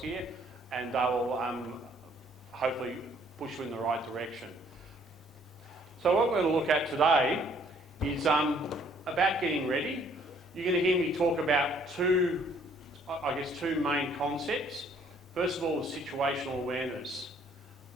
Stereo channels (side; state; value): both; normal; correlation 0.62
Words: here, and they will hopefully push you in the right direction. So what we're going to look at today is about getting ready. You're going to hear me talk about two main concepts. First of all is situational awareness,